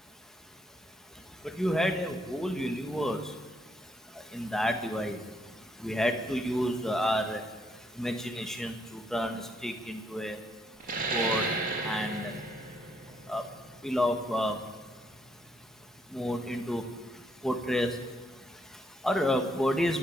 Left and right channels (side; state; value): both; normal; correlation 0.73